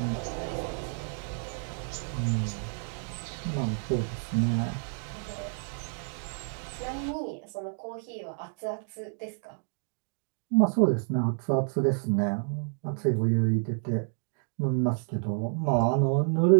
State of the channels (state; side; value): silent; left; 56 dB below the other